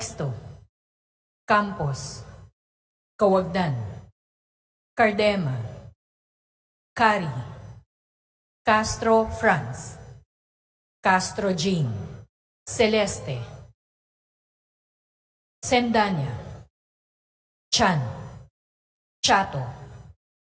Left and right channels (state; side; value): identical; both; correlation 1.00